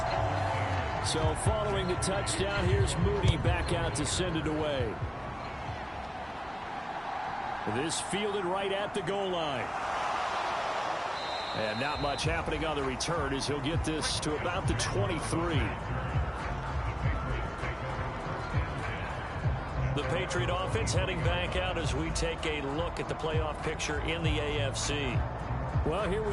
So following the touchdown, here's Moody back out to send it away. This fielded right at the goal line. And not much happening on the return as he'll get this to about the 23. The Patriot offense heading back out as we take a look at the playoff picture in the AFC. Well, here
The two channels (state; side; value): identical; both; correlation 1.00